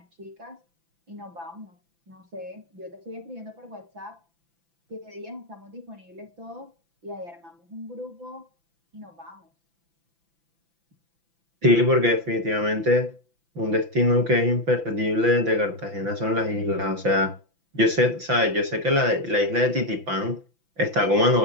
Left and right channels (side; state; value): left; late; 5.9 ms